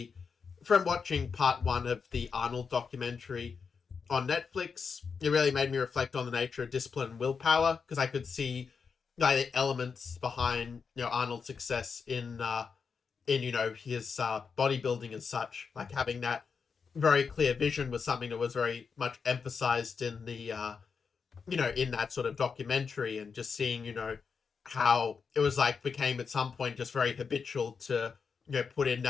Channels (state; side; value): quieter; right; 5.7 dB